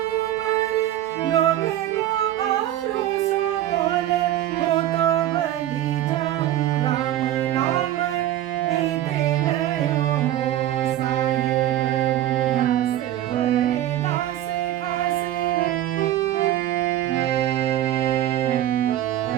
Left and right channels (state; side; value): quieter; left; 12.9 dB